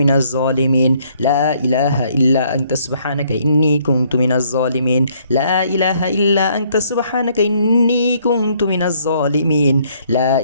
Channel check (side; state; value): both; inverted; correlation -0.66